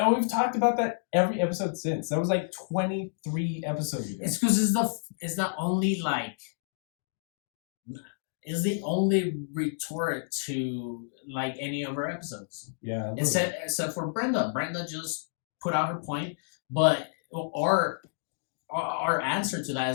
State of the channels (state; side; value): silent; right; digital silence